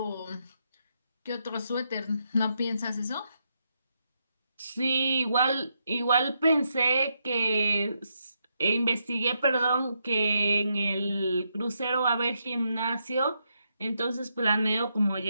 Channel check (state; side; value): inverted; both; correlation -0.80